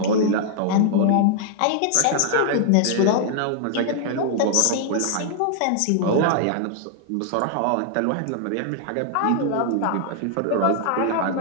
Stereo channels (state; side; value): different; both; correlation 0.00